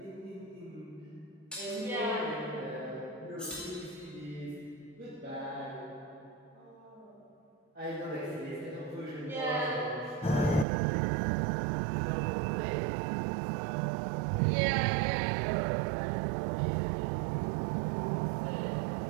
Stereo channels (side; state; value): left; drops out; at 10.7 s